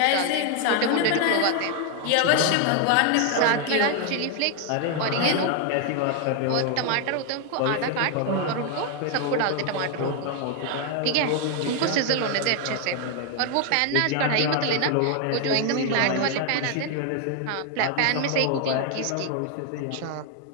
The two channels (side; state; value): both; different; correlation 0.01